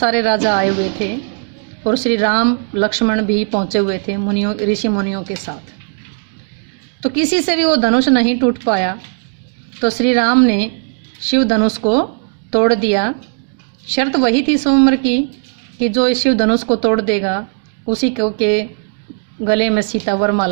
राजा आए हुए थे और श्री राम लक्ष्मण भी पहुँचे हुए थे मुनियों ऋषि मुनियों के साथ। तो किसी से भी वो धनुष नहीं टूट पाया, तो श्री राम ने शिव धनुष को तोड़ दिया। शर्त वही थी स्वयंवर की कि जो इस शिव धनुष को तोड़ देगा उसी को के गले में सीता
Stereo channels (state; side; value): silent; left; 58 dB below the other